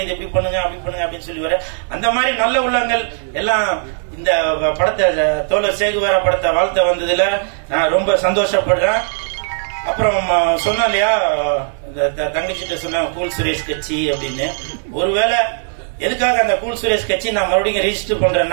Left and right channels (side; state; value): left; silent; digital silence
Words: இது இப்படி பண்ணுங்க அப்படி பண்ணுங்க அப்படின்னு சொல்லுவாரு. அந்த மாதிரி நல்ல உள்ளங்கள் எல்லாம் இந்த படத்தை தோழர் சேகுவாரா படத்தை வாழ்த்த வந்ததுல நான் ரொம்ப சந்தோஷப்படுறேன். அப்புறம் சொன்னா இல்லையா தங்கச்சிட்ட சொன்ன கூல் சுரேஷ் கட்சி அப்படின்னு. ஒருவேளை எதுக்காக அந்த கூல் சுரேஷ் கட்சி நான் மறுபடியும் ரெஜிஸ்டர்